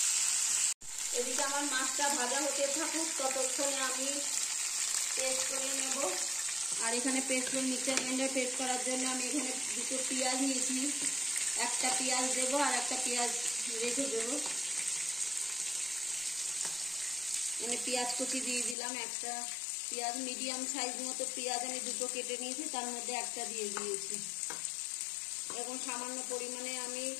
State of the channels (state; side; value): drops out; right; at 18.8 s